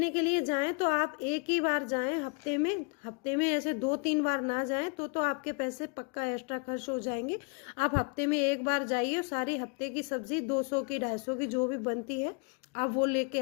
के लिए जाएं तो आप एक ही बार जाएं हफ्ते में ऐसे 2-3 बार ना जाएं तो आपके पैसे पक्का एक्स्ट्रा खर्च हो जाएंगे। आप हफ्ते में एक बार जाइए और सारी हफ्ते की सब्जी 200 की 250 की जो भी बनती है आप वो लेके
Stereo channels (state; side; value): quieter; right; 34.6 dB